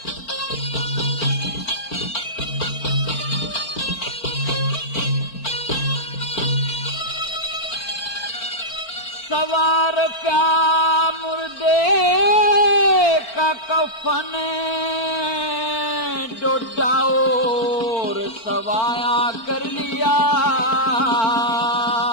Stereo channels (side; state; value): right; late; 4.4 ms